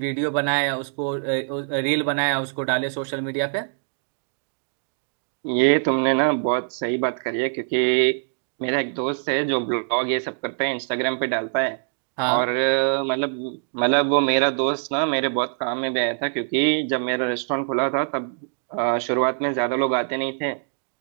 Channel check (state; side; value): silent; left; digital silence